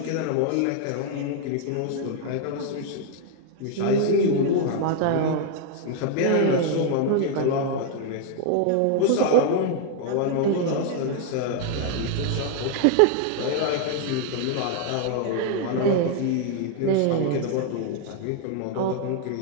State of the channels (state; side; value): different; both; correlation 0.00